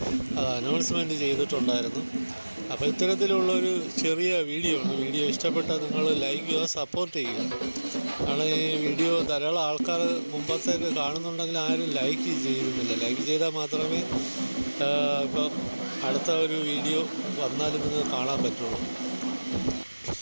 അത് അനൗൺസ്മെൻറ്റ് ചെയ്തിട്ടുണ്ടായിരുന്നു. അപ്പോൾ ഇത്തരത്തിലുള്ളൊരു ചെറിയ വീഡിയോ ആണ്. വീഡിയോ ഇഷ്ടപ്പെട്ടാൽ നിങ്ങൾ ലൈക്ക് ചെയ്യുക, സപ്പോർട്ട് ചെയ്യുക. കാരണം ഈ വീഡിയോ ധാരാളം ആൾക്കാർ മുമ്പത്തേക്ക് കാണുന്നുണ്ടെങ്കിൽ ആരും ലൈക്ക് ചെയ്യുന്നില്ല. ലൈക്ക് ചെയ്താൽ മാത്രമേ ഇപ്പോൾ അടുത്ത ഒരു വീഡിയോ വന്നാലും നിങ്ങൾക്ക് കാണാൻ പറ്റുള്ളൂ.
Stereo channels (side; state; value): both; inverted; correlation -1.00